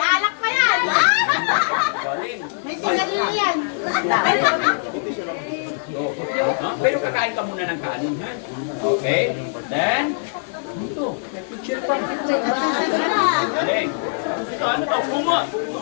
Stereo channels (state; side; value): silent; right; digital silence